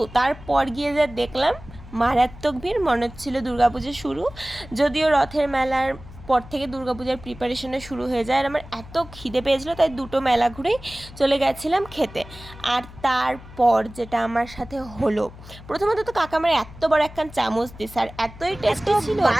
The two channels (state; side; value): noise; left; hum, 17 dB below the sound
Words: তারপর গিয়ে যা দেখলাম, মারাত্মক ভিড়, মনে হচ্ছিলো দুর্গাপুজো শুরু। যদিও রথের মেলার পর থেকে দুর্গাপূজার প্রিপারেশনে শুরু হয়ে যায়। আর আমার এত খিদে পেয়েছিলো, তাই দুটো মেলা ঘুরেই চলে গেছিলাম খেতে। আর তারপর যেটা আমার সাথে হলো, প্রথমত তো কাকা আমার এত বড় একখান চামচ দিছে, আর এতই টেস্টি ছিল